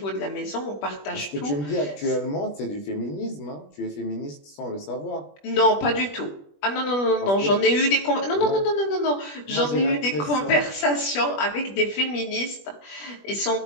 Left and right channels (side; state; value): right; late; 20 ms